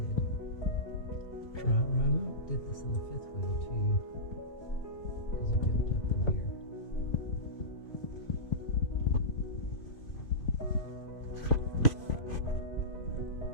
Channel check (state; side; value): late; right; 2.8 ms